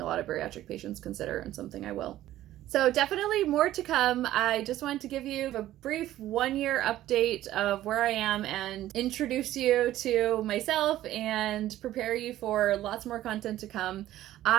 a lot of bariatric patients consider, and something I will. So definitely more to come. I just wanted to give you a brief 1-year update of where I am and introduce you to myself and prepare you for lots more content to come.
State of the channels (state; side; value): quieter; left; 13.9 dB